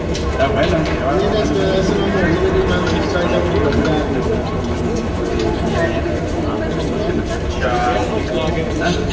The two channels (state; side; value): identical; both; correlation 1.00